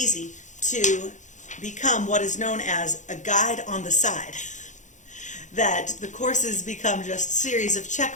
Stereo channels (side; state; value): right; late; 0.35 ms